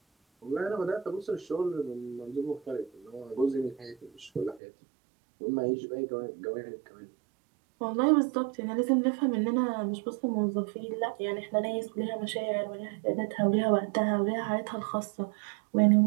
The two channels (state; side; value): drops out; left; at 4.6 s